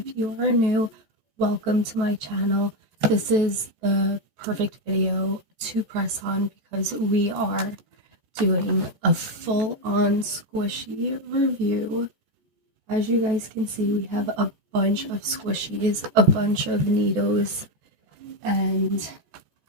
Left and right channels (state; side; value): late; left; 14 ms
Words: you are new, welcome to my channel. This is the perfect video to press on because we are doing a full-on squishy review. As you guys can see, we have a bunch of squishies, a bunch of Needos, and